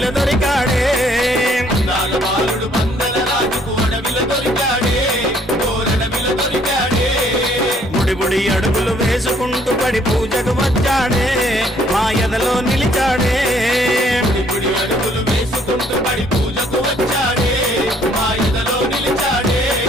దొరికాడే అందాల బాలుడు పందల రాజుకు అడవిలో దొరికాడే ఓరడవిలో దొరికాడే ముడిబుడి అడుగులు వేసుకుంటూ పడి పూజకు వచ్చాడే మా ఎదలో నిలిచాడే ముడిబుడి అడుగులు వేసుకుంటూ పడి పూజకు వచ్చాడే మా ఎదలో నిలిచాడే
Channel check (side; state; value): both; normal; correlation 0.63